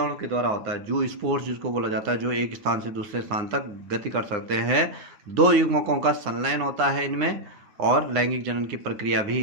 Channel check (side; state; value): left; late; 9.9 ms